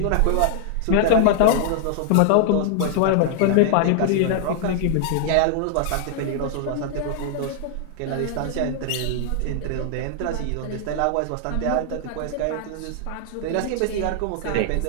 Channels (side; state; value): both; different; correlation 0.00